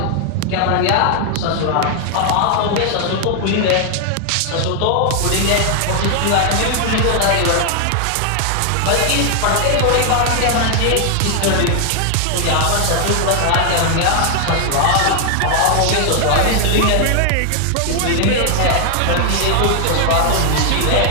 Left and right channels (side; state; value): both; different; correlation 0.00